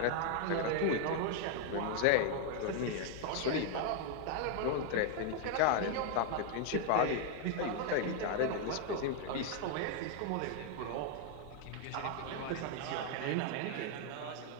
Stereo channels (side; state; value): both; different; correlation 0.00